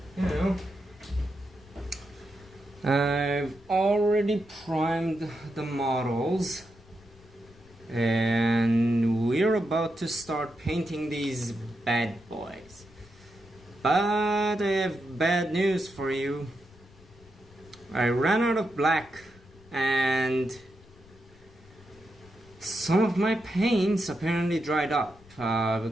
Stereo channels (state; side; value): noise; left; rumble, 25 dB below the sound